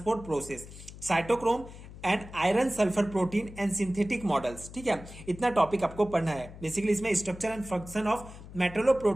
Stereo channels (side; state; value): left; noise; hum, 15 dB below the sound